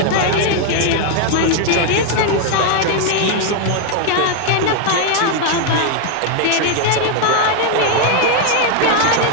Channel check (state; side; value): different; both; correlation 0.00